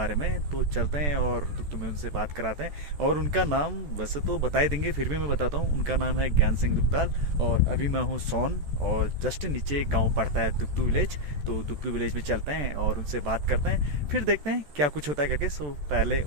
में। तो चलते हैं और दुकतू में उनसे बात कराते हैं। और उनका नाम वैसे तो बता ही देंगे, फिर भी मैं बताता हूँ। उनका नाम है ज्ञान सिंह दुकताल और अभी मैं हूँ सोन और जस्ट नीचे एक गाँव पड़ता है दुकतू विलेज। तो दुकतू विलेज में चलते हैं और उनसे बात करते हैं, फिर देखते हैं क्या कुछ होता है करके। सो पहले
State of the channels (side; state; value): left; late; 14 ms